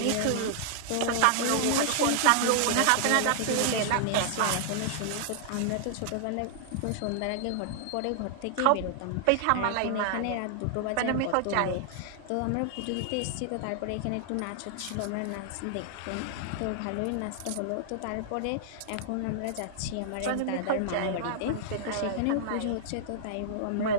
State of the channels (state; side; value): different; both; correlation -0.01